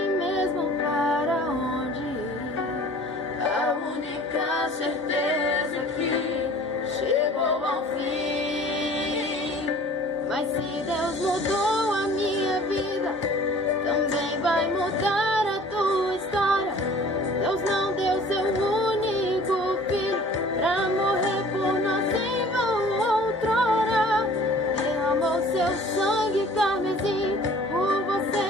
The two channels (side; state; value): both; normal; correlation 0.48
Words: mesmo para onde ir. A única certeza é que chegou ao fim. Mas se Deus mudou a minha vida, também vai mudar a tua história. Deus não deu seu único filho pra morrer por nós em vão outrora. Derramou seu sangue carmesim por você